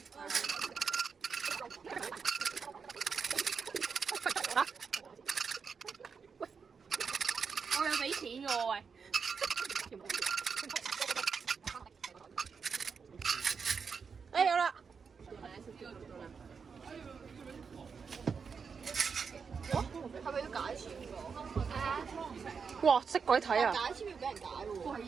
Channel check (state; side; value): quieter; left; 5.8 dB